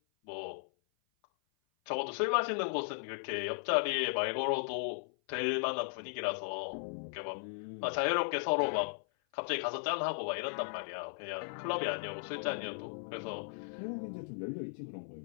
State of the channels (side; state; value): right; silent; 53 dB below the other